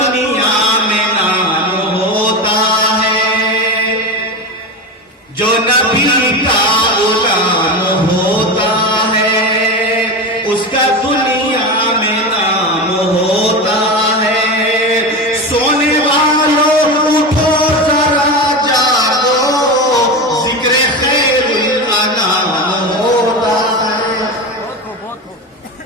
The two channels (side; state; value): both; normal; correlation 0.22